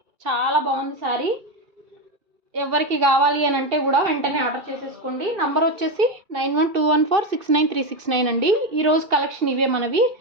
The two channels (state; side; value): late; left; 2.3 ms